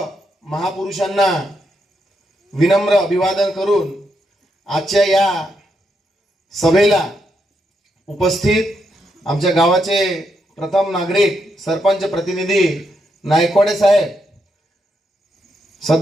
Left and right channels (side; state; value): both; normal; correlation 0.80